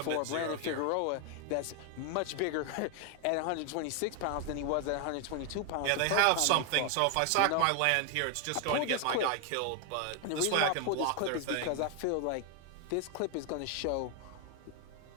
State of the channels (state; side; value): different; both; correlation 0.00